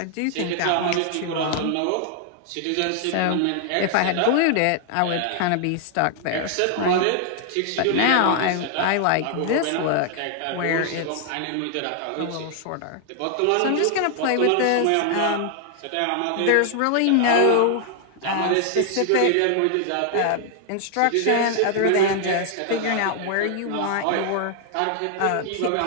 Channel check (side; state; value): both; different; correlation 0.00